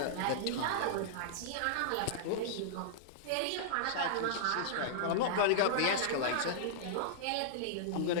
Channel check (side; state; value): both; different; correlation -0.02